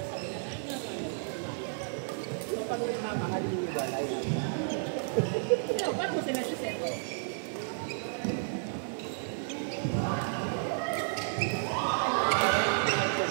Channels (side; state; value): left; silent; digital silence